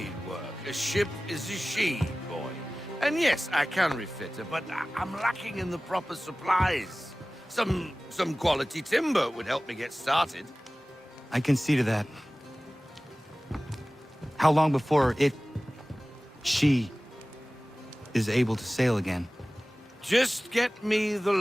work. A ship is a she, boy. And yes, I can refit her, but I'm lacking in the proper supplies. Some quality timber would help me get started. I can see to that. How long before she is able to sail again? Just get me the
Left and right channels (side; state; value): both; normal; correlation 0.98